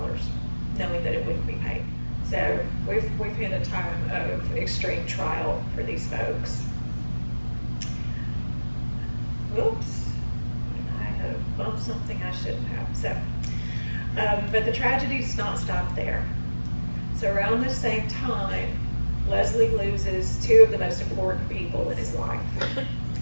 knowing that it wouldn't be paid. So we've hit a time of extreme trial for these folks. Whoops, I have bumped something I shouldn't have. So, but the tragedy does not stop there. So around this same time, Leslie loses 2 of the most important people in his life.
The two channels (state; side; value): inverted; both; correlation -1.00